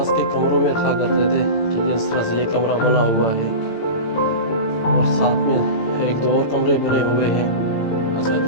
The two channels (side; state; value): right; late; 18 ms